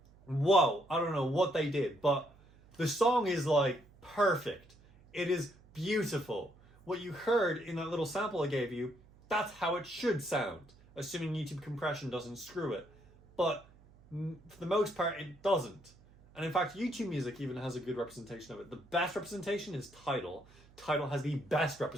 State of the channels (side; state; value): right; noise; hum, 26 dB below the sound